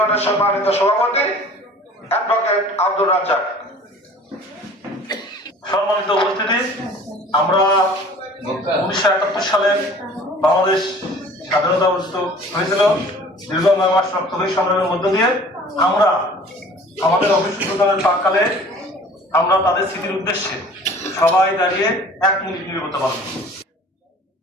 সম্মানিত সভাপতি অ্যাডভোকেট আব্দুর রাজ্জাক। সম্মানিত উপস্থিতি, আমরা 1971 সালে বাংলাদেশ স্বাধীনতা অর্জিত হয়েছিল। দীর্ঘ 9 মাস রক্তক্ষয়ী সংগ্রামের মধ্য দিয়ে আমরা আমাদের অফিস উদ্বোধনের প্রাক্কালে আমরা তাদের স্মৃতির উদ্দেশ্যে সবাই দাঁড়িয়ে 1 মিনিট নীরবতা পালন করি।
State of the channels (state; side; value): normal; both; correlation 0.48